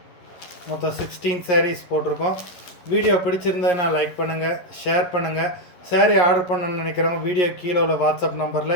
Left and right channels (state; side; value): late; right; 11 ms